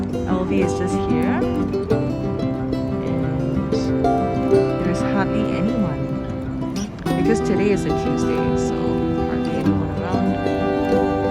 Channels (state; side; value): identical; both; correlation 1.00